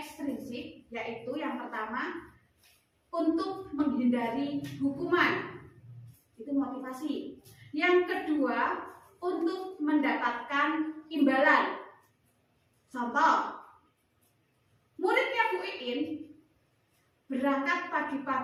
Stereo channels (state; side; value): identical; both; correlation 1.00